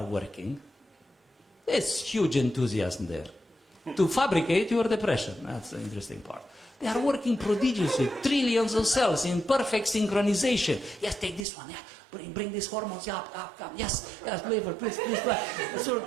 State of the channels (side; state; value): left; drops out; at 11.5 s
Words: working, there's huge enthusiasm there to fabricate your depression. That's the interesting part. They are working prodigiously, trillions of cells in perfect synchronization. Yes, take this one. Yeah, bring these hormones. Yeah, up, come. Yes, flavor, please. So,